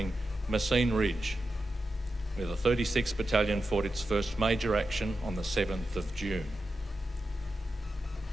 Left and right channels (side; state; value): both; normal; correlation 0.90